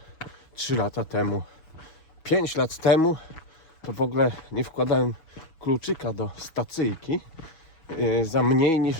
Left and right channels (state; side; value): late; right; 6.2 ms